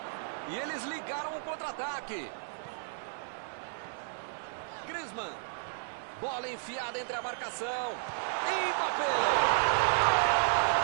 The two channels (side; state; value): left; silent; digital silence